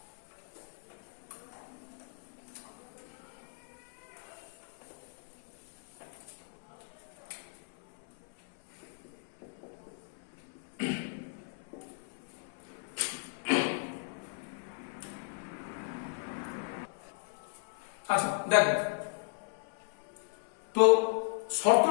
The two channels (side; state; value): right; silent; 54 dB below the other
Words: আচ্ছা দেখো, তো